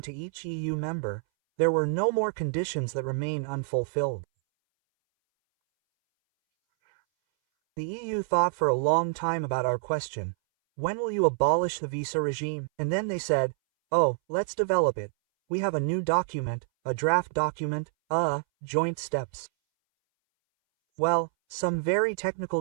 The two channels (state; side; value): silent; left; 60 dB below the other